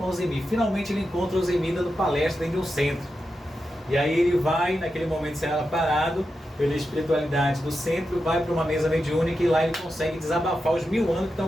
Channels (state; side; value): normal; both; correlation 0.89